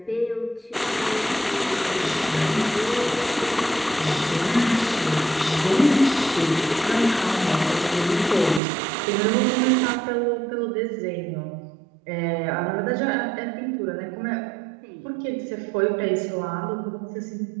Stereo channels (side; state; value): left; drops out; at 8.6 s